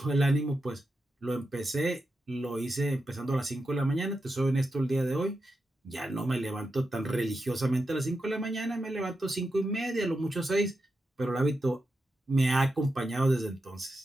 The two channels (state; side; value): normal; both; correlation 0.88